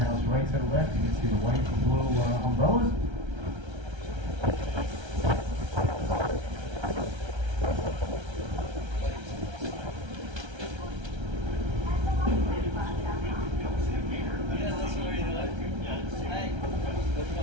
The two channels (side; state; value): left; late; 1.3 ms